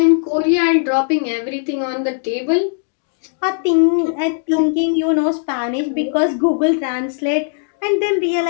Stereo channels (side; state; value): right; silent; digital silence